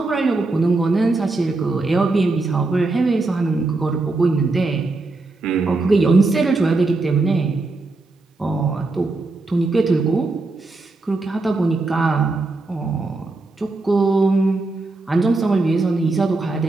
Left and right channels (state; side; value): quieter; left; 3.3 dB